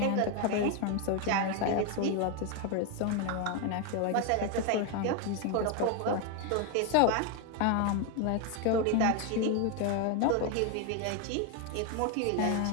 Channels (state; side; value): different; both; correlation 0.01